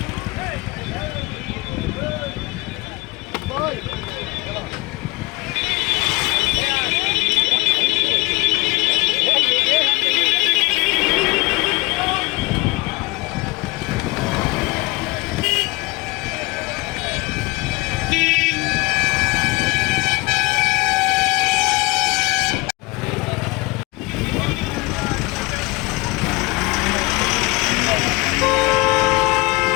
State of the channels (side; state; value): right; quieter; 23.9 dB